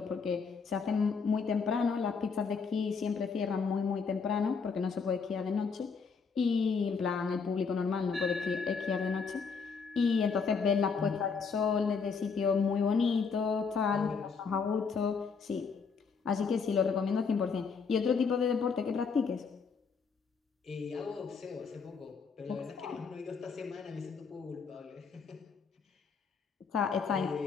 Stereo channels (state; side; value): quieter; right; 5.4 dB